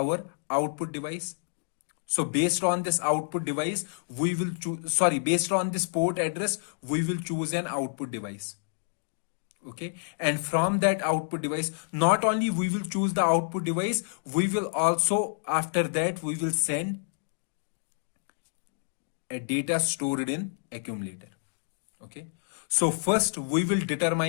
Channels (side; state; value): right; silent; digital silence